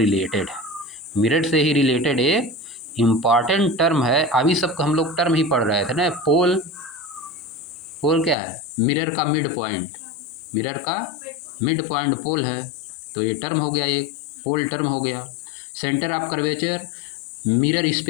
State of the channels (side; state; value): right; drops out; at 8.3 s